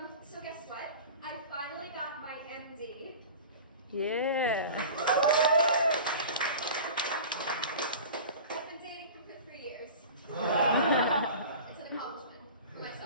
so guess what? I finally got my MD. Yeah. I've been dating him for 3 years. It's an accomplishment for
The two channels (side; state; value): both; inverted; correlation -0.37